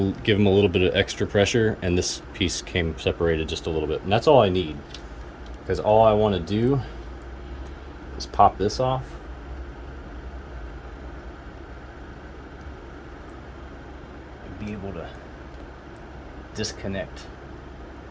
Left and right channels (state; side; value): identical; both; correlation 1.00